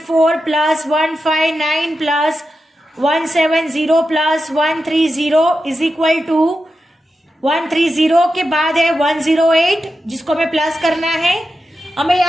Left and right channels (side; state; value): both; normal; correlation 0.89